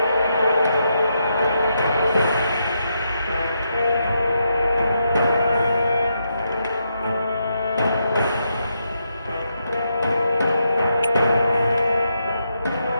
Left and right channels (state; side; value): inverted; both; correlation -0.81